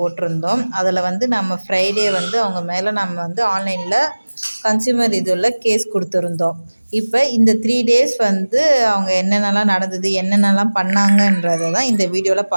அதில் நம்ம ஃப்ரைடே அவங்க மேலே நம்ம ஆன்லைனில் கன்சியூமர் இதில் கேஸ் கொடுத்துருந்தோம். இப்போ இந்த 3 டேஸ் அவங்க என்னென்னலாம் நடந்தது, என்னென்னலாம் பண்ணாங்கன்றதை தான் இந்த வீடியோவில்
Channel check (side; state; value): both; inverted; correlation -1.00